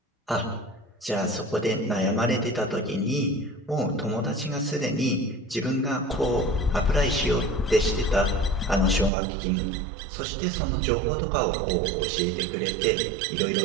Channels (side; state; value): left; drops out; at 9.1 s